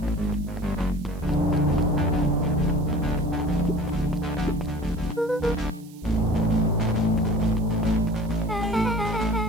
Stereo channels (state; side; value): noise; right; hiss, 25 dB below the sound